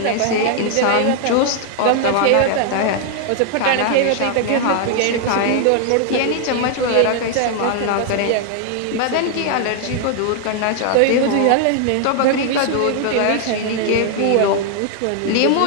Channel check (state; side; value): different; both; correlation 0.00